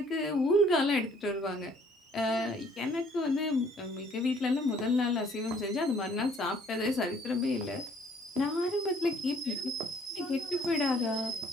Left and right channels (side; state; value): both; normal; correlation 0.60